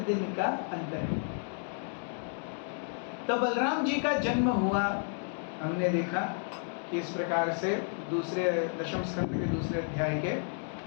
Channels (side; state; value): right; silent; 57 dB below the other